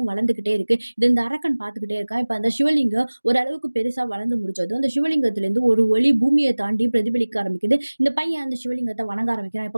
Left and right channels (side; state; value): both; inverted; correlation -1.00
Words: வளர்ந்துகிட்டே இருக்கு. இது இந்த அரக்கன் பார்த்துக்கிட்டே இருக்கான். இப்ப அந்த சிவலிங்கம் ஓரளவுக்கு பெருசா வளர்ந்து முடிச்சதும், அந்த சிவலிங்கத்திலிருந்து ஒரு ஒளி பூமிய தாண்டி பிரதிபலிக்க ஆரம்பிக்குது. இந்த பையன் அந்த சிவலிங்கத்த வணங்க ஆரம்பிக்கிறான்.